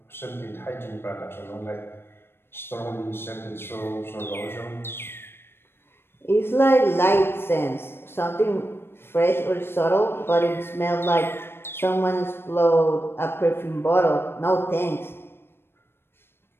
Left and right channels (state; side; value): late; right; 0.11 ms